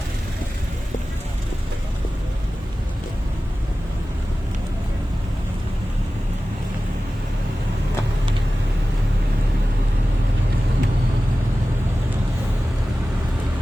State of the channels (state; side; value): normal; both; correlation 0.95